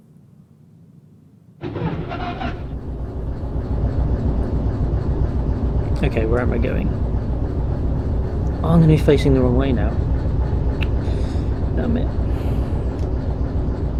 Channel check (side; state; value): both; identical; correlation 1.00